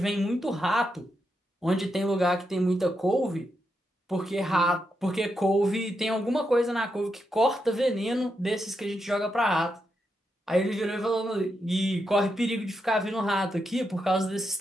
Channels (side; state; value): both; normal; correlation 0.84